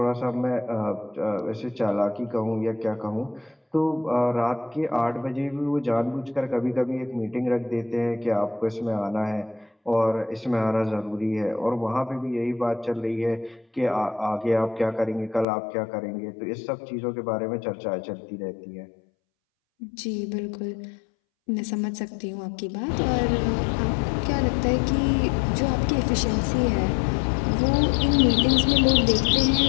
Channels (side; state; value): right; drops out; at 15.5 s